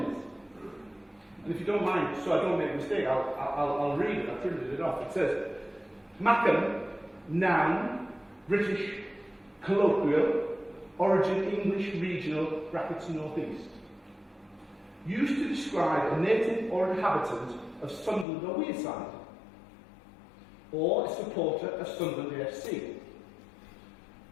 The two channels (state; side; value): drops out; right; at 18.2 s